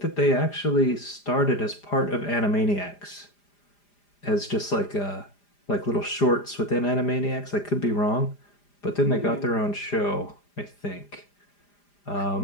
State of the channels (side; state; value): right; late; 5.0 ms